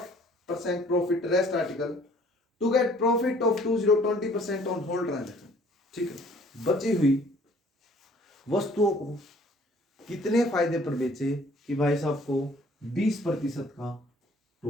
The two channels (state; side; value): normal; both; correlation 0.56